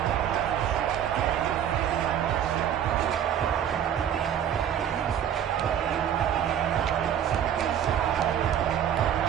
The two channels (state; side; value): quieter; left; 9.6 dB